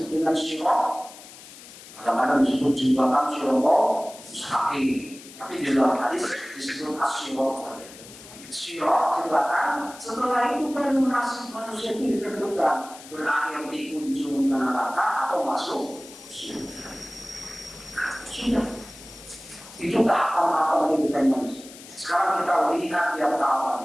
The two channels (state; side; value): noise; left; hiss, 18 dB below the sound